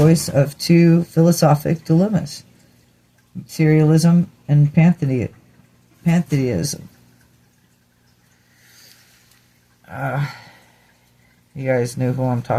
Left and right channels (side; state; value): both; identical; correlation 1.00